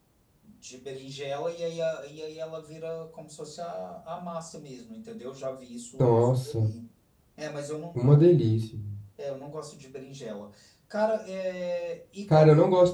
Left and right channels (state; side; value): identical; both; correlation 1.00